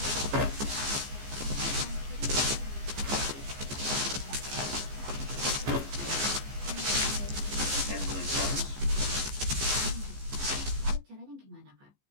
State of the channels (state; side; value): late; left; 15 ms